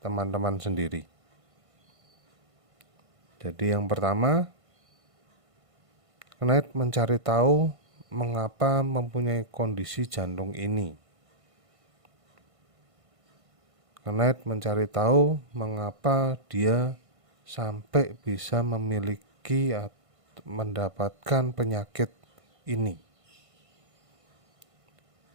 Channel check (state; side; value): late; left; 1.5 ms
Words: teman-teman sendiri. Jadi yang pertama, Knight mencari tahu mengapa mempunyai kondisi jantung ini. Knight mencari tahu mengapa dia sampai bisa lagi mendapatkan penyakit ini.